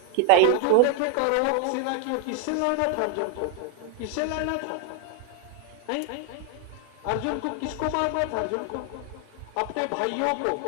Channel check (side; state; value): both; different; correlation 0.01